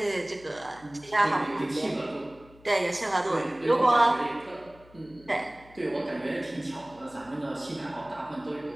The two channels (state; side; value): noise; left; hum, 25 dB below the sound